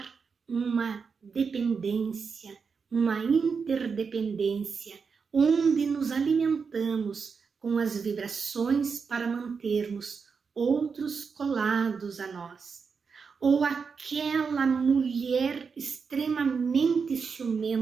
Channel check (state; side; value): quieter; left; 5.5 dB